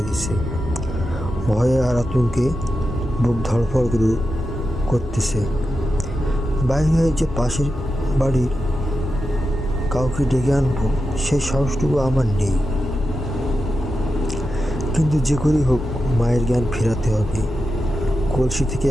গেছে। ভয়ে আর আতঙ্কে বুক ধড়ফড় করতেছে। বাইরে হয়ে যে পাশের বাড়ির কাউকে ডেকে আনবো সেই সাহসটুকু আমার নেই, কিন্তু যে করেই হোক মায়ের জ্ঞান ফেরাতে হবে। কলসি থেকে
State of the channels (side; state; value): both; normal; correlation 0.90